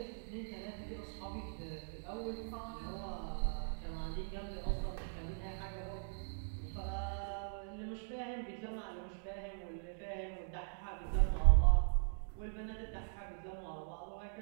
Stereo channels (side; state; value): left; silent; digital silence